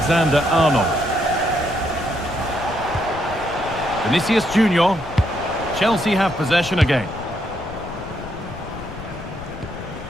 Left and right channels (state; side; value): noise; left; rumble, 13 dB below the sound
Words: Vinicius Junior. Chelsea have possession again.